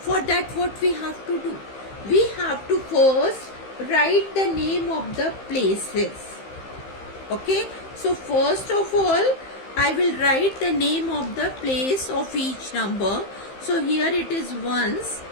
that, what we have to do? We have to first write the name of the places. Okay. So first of all, I will write the name of the place of each number. So here it is ones,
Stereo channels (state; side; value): late; right; 15 ms